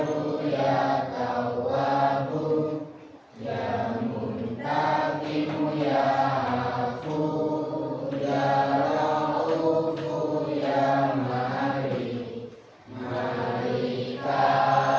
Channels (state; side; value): identical; both; correlation 1.00